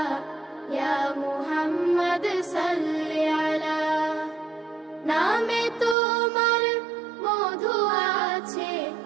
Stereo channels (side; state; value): left; drops out; at 6.0 s